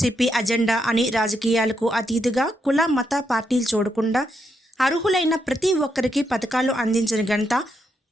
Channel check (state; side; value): normal; both; correlation 0.80